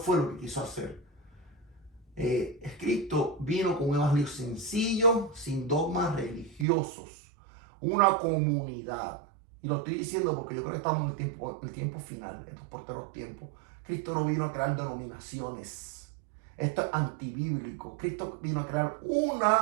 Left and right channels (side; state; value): left; drops out; at 6.7 s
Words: lo que quiso hacer. Cristo vino con un evangelio sencillo, sin dogmas religiosos. Una comunidad. Y lo estoy diciendo porque yo creo que estamos en el tiempo final, en estos porteros tiempos. Cristo no vino a crear denominaciones. Esto es antibíblico. Cristo vino a crear